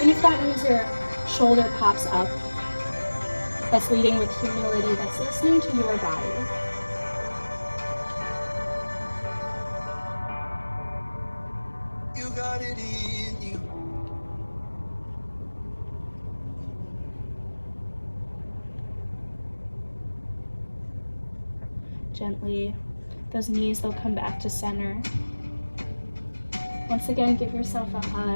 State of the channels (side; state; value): both; inverted; correlation -1.00